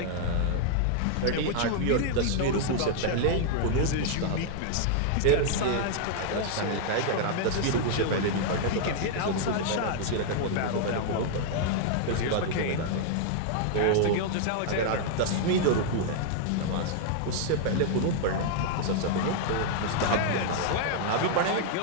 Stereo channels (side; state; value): both; different; correlation -0.01